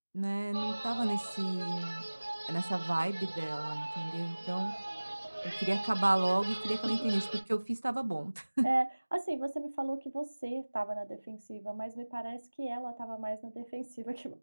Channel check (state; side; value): inverted; both; correlation -1.00